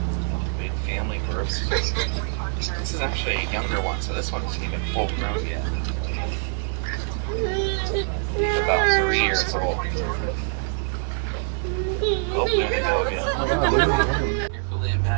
Big family groups. This is actually a younger one, so this one isn't even full grown yet. He's about 3 years old. Oh, there they go again. Carefully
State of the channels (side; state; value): left; silent; 58 dB below the other